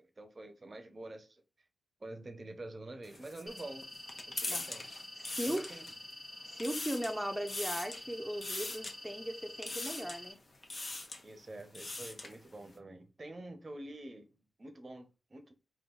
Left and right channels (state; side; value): normal; both; correlation 0.96